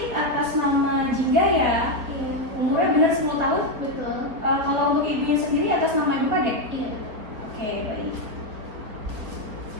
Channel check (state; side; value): late; left; 4.3 ms